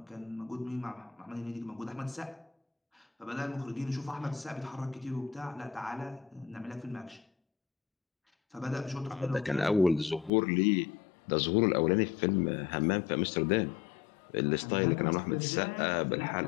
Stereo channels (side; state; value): right; drops out; at 10.3 s